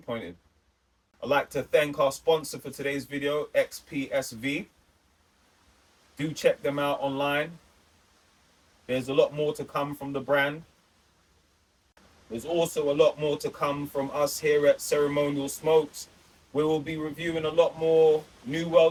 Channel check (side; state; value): both; identical; correlation 1.00